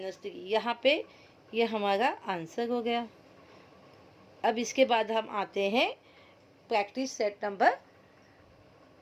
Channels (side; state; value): both; identical; correlation 1.00